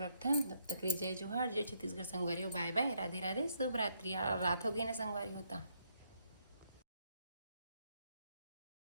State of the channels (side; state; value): both; inverted; correlation -0.74